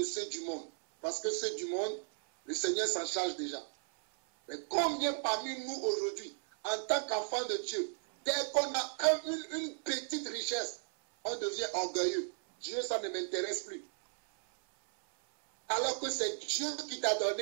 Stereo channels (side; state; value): left; silent; 54 dB below the other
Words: ceux du monde, parce que ceux du monde, le Seigneur s'en charge déjà. Mais combien parmi nous aujourd'hui, en tant qu'enfants de Dieu, dès qu'on a une petite richesse, on devient orgueilleux. Dieu, ça ne m'intéresse plus. Alors que c'est Dieu qui t'a